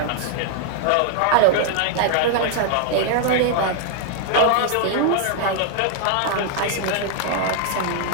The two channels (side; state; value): both; different; correlation 0.00